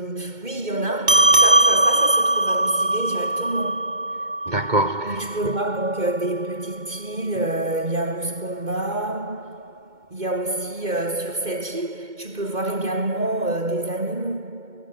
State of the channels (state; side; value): late; left; 2.2 ms